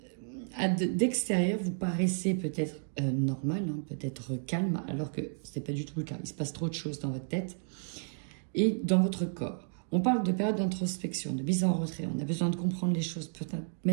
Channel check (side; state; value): left; silent; digital silence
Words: D'extérieur, vous paraissez peut-être normal, hein, peut-être calme, alors que ce n'est pas du tout le cas. Il se passe trop de choses dans votre tête. Et dans votre corps. On parle de période d'introspection, de mise en retrait. On a besoin de comprendre les choses, peut-être